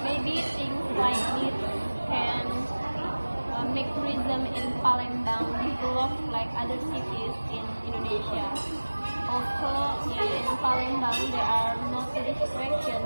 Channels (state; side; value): inverted; both; correlation -1.00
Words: Maybe things like this can make tourism in Palembang develop like other cities in Indonesia. Also, in Palembang, there are no tourist